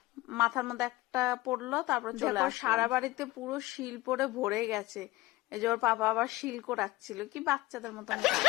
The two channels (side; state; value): right; quieter; 18.7 dB